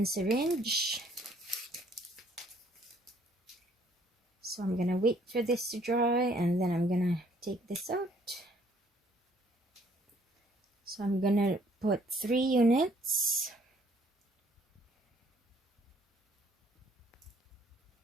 So I'm gonna wait for this to dry, and then I'm gonna take this out. So I'm gonna put 3 units.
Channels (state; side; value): normal; both; correlation 0.62